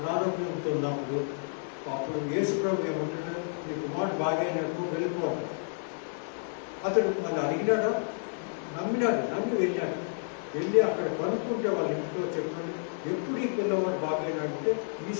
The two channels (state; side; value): silent; right; digital silence